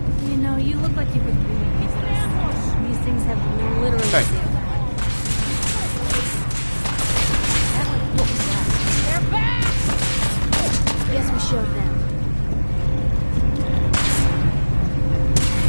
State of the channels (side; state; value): both; inverted; correlation -1.00